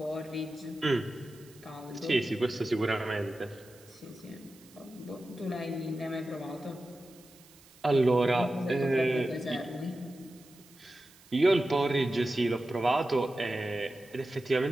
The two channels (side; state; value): right; noise; hiss, 25 dB below the sound